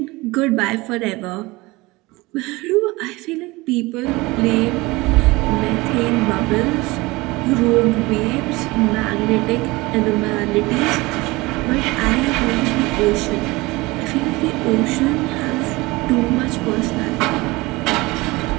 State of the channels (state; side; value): quieter; left; 22.1 dB